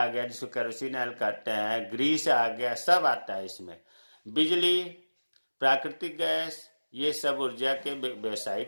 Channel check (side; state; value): both; inverted; correlation -1.00